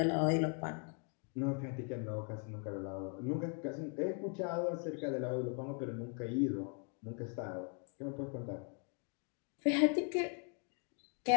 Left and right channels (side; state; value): right; quieter; 39.5 dB